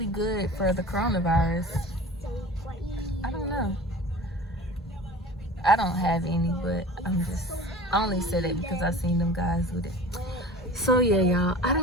good for the coronavirus. I don't know. I don't have any, but I only said it because I seen them guys with it. So yeah, y'all, I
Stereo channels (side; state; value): both; normal; correlation 0.40